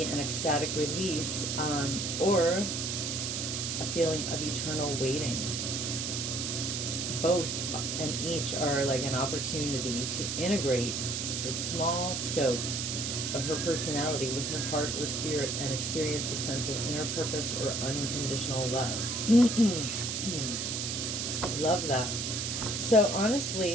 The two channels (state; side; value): noise; right; hiss, 2 dB below the sound